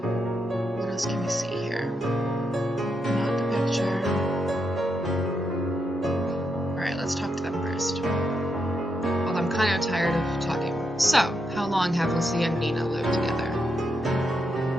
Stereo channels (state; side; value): normal; both; correlation 0.82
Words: What else can we see here? Not the picture. Alright, let's talk to them first. Well, I'm kind of tired of talking. So, how long have Lucia and Nina lived together?